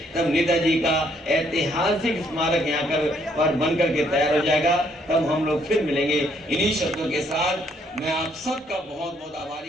तब नेताजी का ऐतिहासिक स्मारक यहाँ पर बन करके तैयार हो जाएगा, तब हम लोग फिर मिलेंगे। इन्हीं शब्दों के साथ मैं आप सबका बहुत बहुत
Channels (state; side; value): normal; both; correlation 0.69